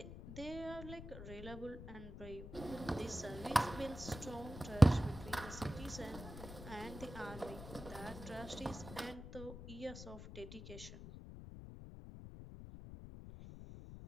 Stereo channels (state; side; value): noise; left; rumble, 11 dB below the sound